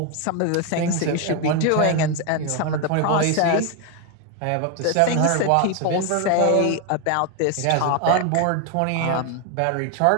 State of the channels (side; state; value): both; different; correlation 0.01